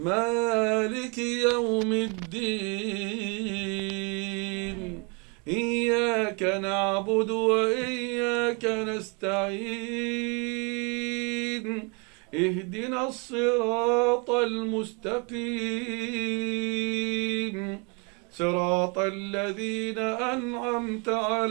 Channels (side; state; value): left; quieter; 32.6 dB